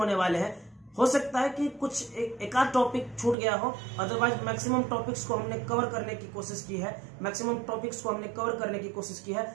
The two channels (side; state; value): left; drops out; at 3.4 s